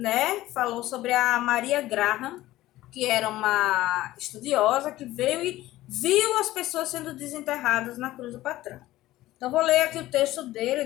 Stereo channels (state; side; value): quieter; right; 16.1 dB